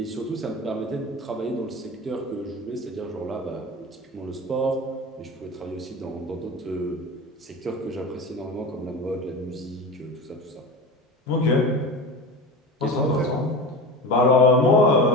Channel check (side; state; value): both; normal; correlation 0.30